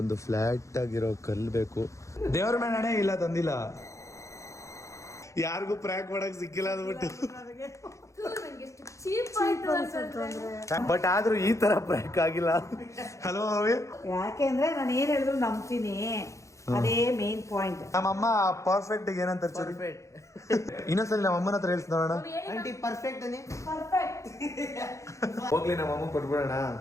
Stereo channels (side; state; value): right; late; 0.15 ms